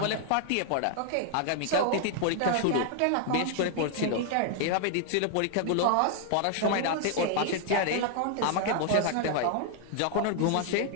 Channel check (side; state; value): both; different; correlation 0.00